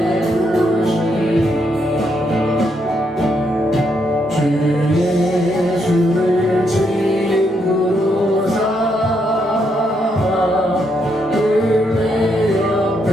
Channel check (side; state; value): both; normal; correlation 0.77